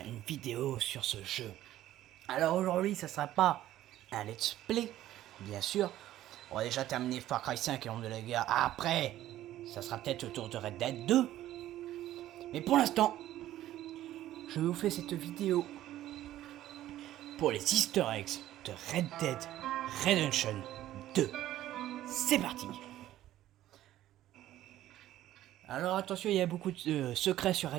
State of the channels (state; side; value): quieter; left; 13.6 dB